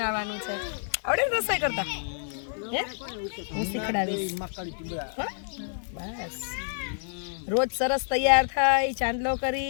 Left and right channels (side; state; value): right; silent; digital silence